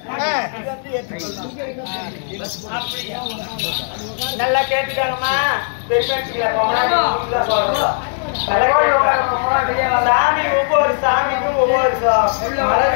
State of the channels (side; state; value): right; silent; digital silence